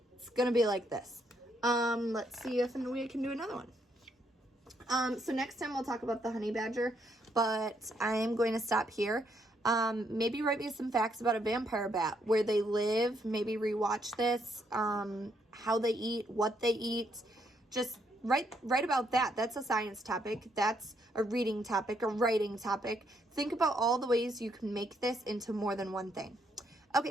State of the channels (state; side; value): normal; both; correlation 0.74